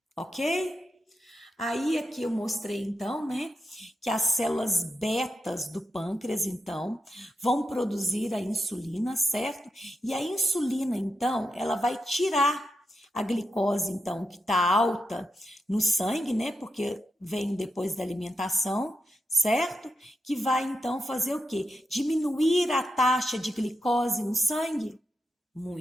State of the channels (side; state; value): both; normal; correlation 0.86